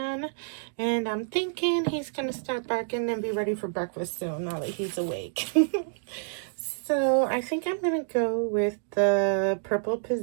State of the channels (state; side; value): silent; left; digital silence